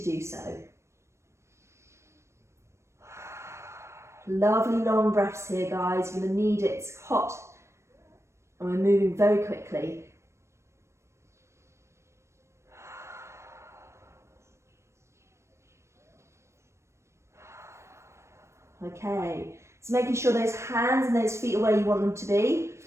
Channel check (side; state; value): left; late; 0.13 ms